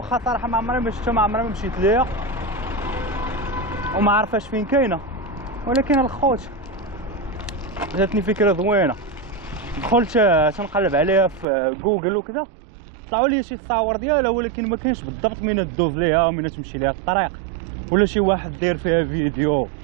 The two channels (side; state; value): left; drops out; at 11.5 s